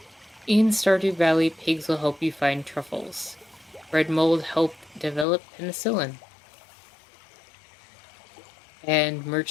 In Stardew Valley, pigs will help you find truffles. Bread mold helped develop penicillin. And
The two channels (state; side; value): drops out; right; at 5.2 s